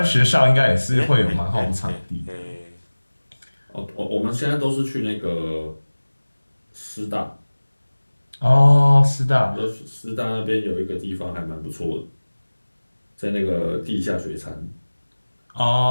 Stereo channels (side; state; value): both; inverted; correlation -1.00